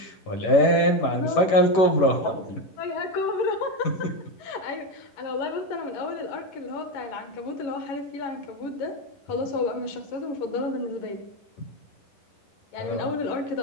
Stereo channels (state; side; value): late; right; 11 ms